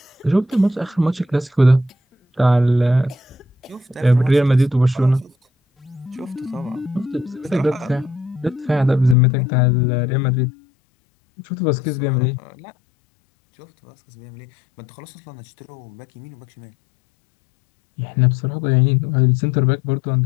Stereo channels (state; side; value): drops out; right; at 9.2 s